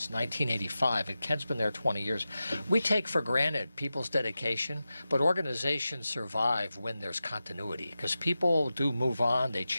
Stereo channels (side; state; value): both; inverted; correlation -0.93